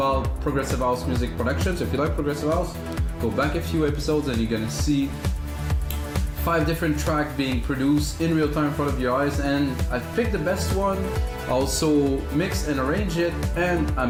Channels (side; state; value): both; identical; correlation 1.00